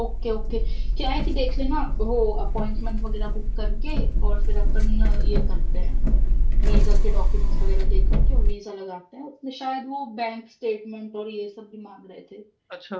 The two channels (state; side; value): identical; both; correlation 1.00